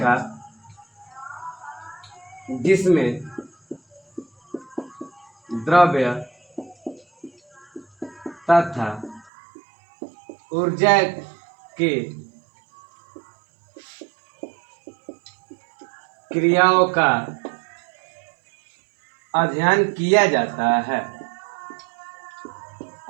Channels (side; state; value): left; drops out; at 9.3 s